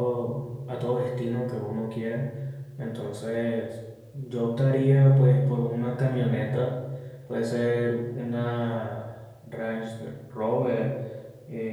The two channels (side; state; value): both; identical; correlation 1.00